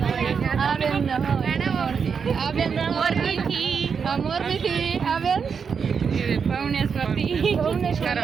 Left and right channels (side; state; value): left; quieter; 6.2 dB